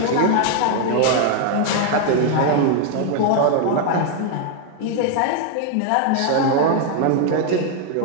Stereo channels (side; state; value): both; different; correlation 0.00